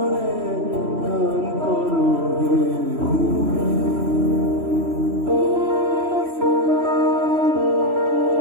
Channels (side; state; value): left; late; 3.0 ms